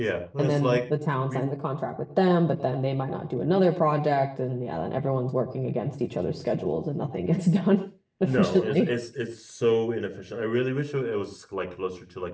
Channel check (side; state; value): both; identical; correlation 1.00